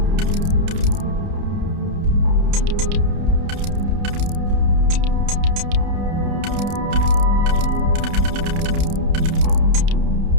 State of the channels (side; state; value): left; late; 30 ms